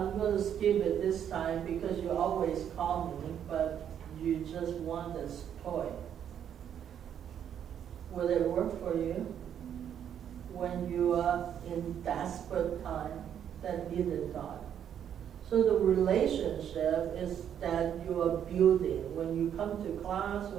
going to skip it this time because you always call me, but you just want this toy. Will it work for you when you are in desperate time that needed God? So the relationship is that you are building when you come to class,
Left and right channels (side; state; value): left; quieter; 9.2 dB